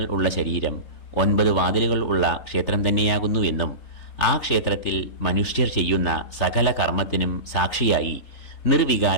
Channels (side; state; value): right; late; 3.7 ms